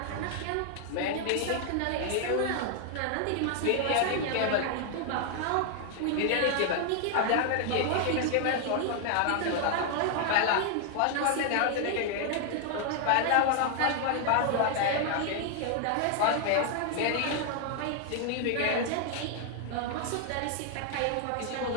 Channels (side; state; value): both; different; correlation 0.00